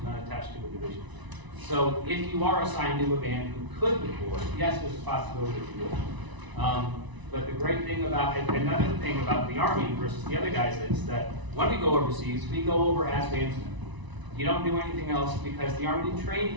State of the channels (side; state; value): left; late; 1.0 ms